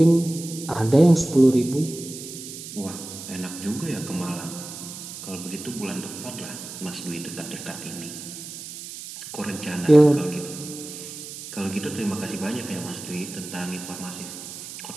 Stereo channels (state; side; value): noise; right; hiss, 11 dB below the sound